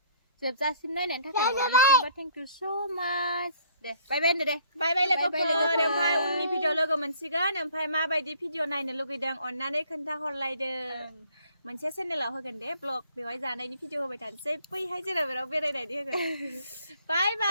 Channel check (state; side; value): inverted; both; correlation -0.59